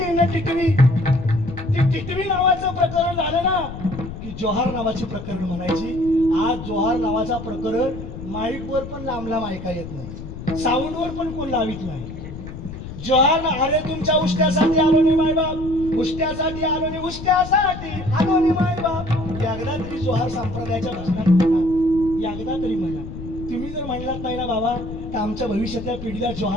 न टिटवी. ती टिटवी नावाचं प्रकरण झालं ना की जोहार नावाची प्रकरण म्हणायची. आज जोहार नावाचा प्रकरण माईकवर पण लांब ऐका येत नाही, साऊंडवर पण कोण लावित नाही. जोहार, अरे तुमच्या उष्ट्यासाठी आलो नाही मायबाप, उष्ट्यासाठी आलो नाही, उष्ट्यासाठी आलो नाही मायबाप. एकदा तरी जोहार संप्रदायाच्या भजनात म्हणा, एकदा तरी म्हणा. तुम्ही जर म्हणलात नाही ना बाबा तर आमच्या भविष्यातल्या पिढीला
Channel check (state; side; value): noise; left; rumble, 10 dB below the sound